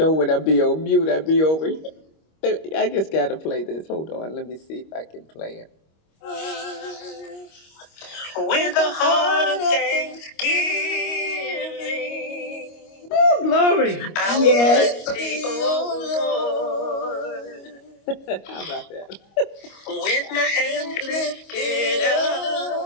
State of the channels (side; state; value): right; late; 25 ms